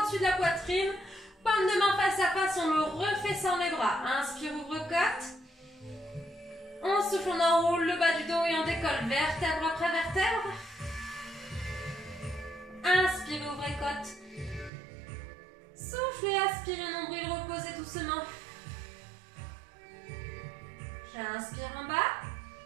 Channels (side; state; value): left; drops out; at 14.7 s